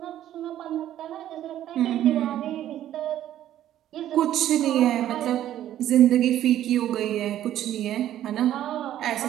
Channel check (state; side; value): quieter; left; 12.1 dB